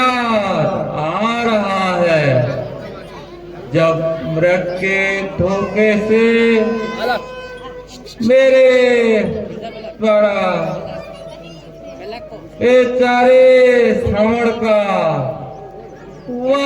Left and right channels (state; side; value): identical; both; correlation 1.00